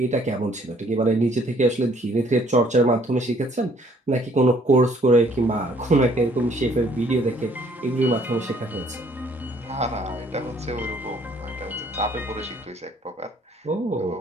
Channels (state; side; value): normal; both; correlation 0.62